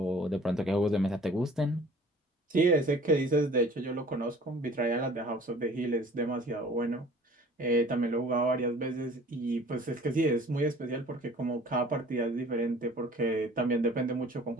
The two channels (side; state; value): both; normal; correlation 0.49